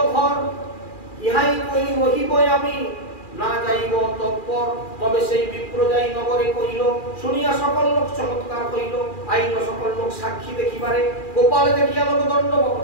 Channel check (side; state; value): right; late; 2.4 ms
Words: ঘর, ইহাই কই রহিব আমি না যাইব তৎপর। তবে সেই বিপ্র যাই নগরে কহিল, শুনিয়া সকল লোক চমৎকার হইল, আইল সকল লোক সাক্ষী দেখিবারে, গোপাল দেখিয়া লোক দণ্ডবত